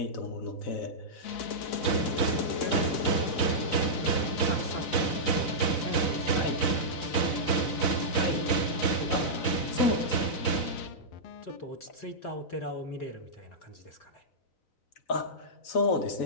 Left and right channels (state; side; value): late; right; 4.0 ms